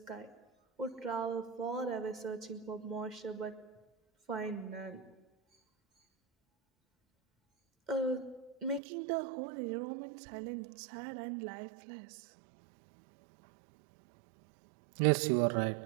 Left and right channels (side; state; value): left; drops out; at 8.8 s